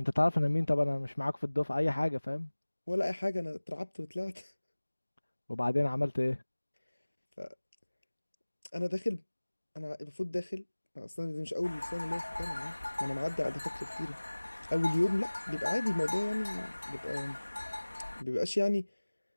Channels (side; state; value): both; inverted; correlation -1.00